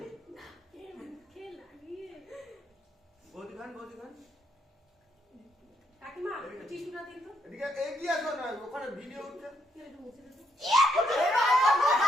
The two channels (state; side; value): normal; both; correlation 0.76